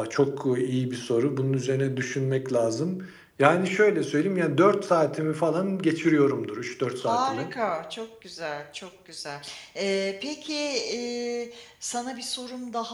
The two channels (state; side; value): identical; both; correlation 1.00